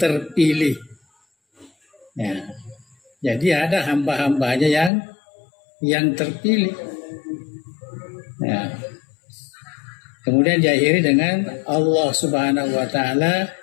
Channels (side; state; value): right; drops out; at 4.9 s